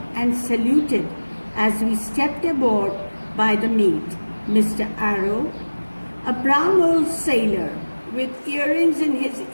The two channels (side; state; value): both; inverted; correlation -1.00